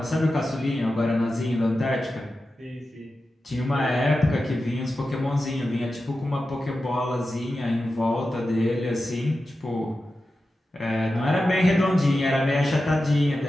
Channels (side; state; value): both; normal; correlation 0.92